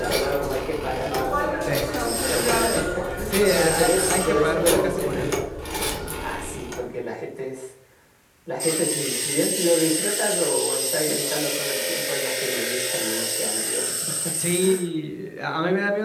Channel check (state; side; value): identical; both; correlation 1.00